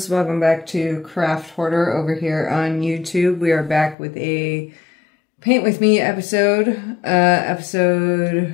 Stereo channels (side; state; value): right; drops out; at 4.0 s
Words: welcome back to Craft Hoarder over here on YouTube. We are back with a Paint With Me episode,